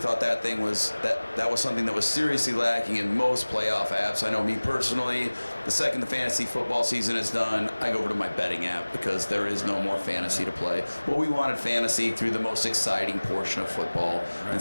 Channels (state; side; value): inverted; both; correlation -1.00